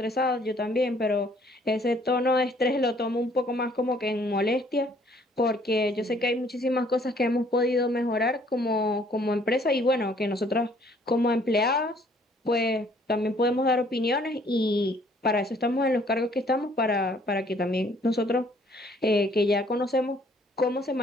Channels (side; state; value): both; normal; correlation 0.61